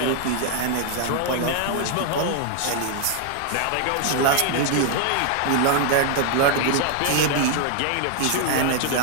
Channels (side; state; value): both; different; correlation 0.00